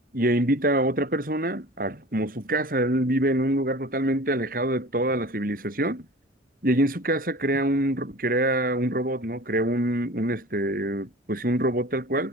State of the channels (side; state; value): both; normal; correlation 0.39